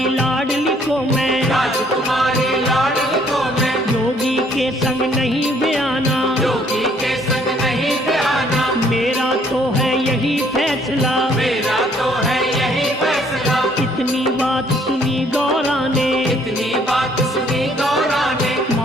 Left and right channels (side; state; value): both; normal; correlation 0.63